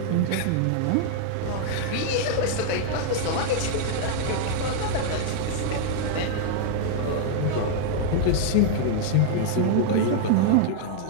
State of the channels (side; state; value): both; different; correlation 0.00